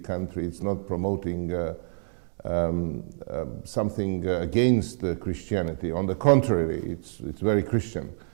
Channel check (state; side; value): silent; left; digital silence